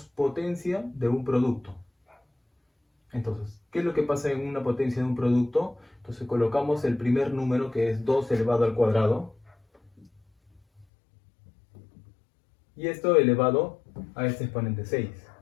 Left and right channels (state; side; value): drops out; right; at 10.9 s